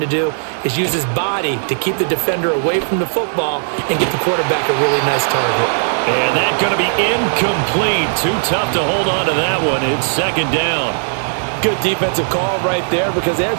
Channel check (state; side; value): silent; left; digital silence